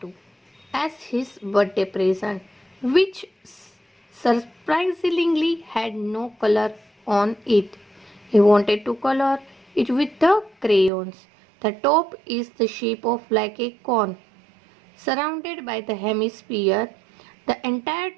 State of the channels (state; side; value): drops out; left; at 10.9 s